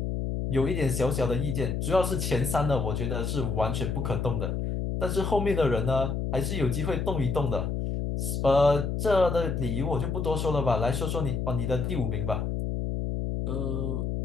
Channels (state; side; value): noise; left; hum, 1 dB below the sound